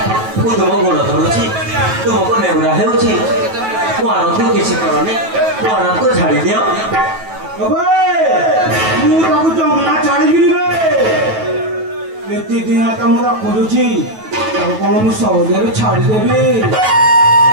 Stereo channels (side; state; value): left; late; 9.2 ms